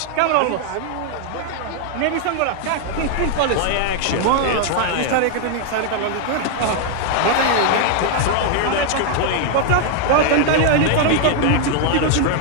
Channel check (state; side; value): different; both; correlation 0.00